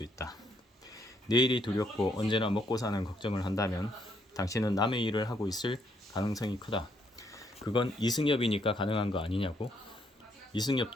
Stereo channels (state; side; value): normal; both; correlation 0.72